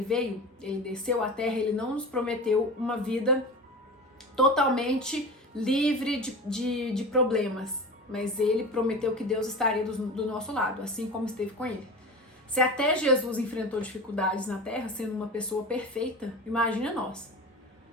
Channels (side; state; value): both; normal; correlation 0.31